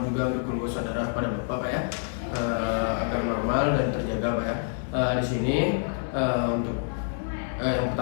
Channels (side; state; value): right; silent; 60 dB below the other